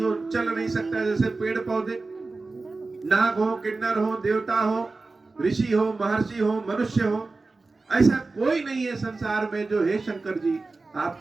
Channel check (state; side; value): quieter; left; 3.6 dB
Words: चल नहीं सकता, जैसे पेड़ पौधे, नाग हो, किन्नर हो, देवता हो, ऋषि हो, महर्षि हो, मनुष्य हो, ऐसा कोई नहीं है संसार में जो हे शंकर जी